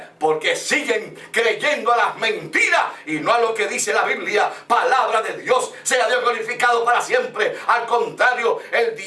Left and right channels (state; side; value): identical; both; correlation 1.00